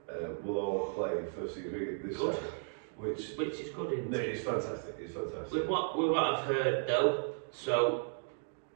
will all play first team cricket this season. Which is good, isn't it? It's fantastic, it's fantastic. With what I've heard though, so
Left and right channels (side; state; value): left; silent; digital silence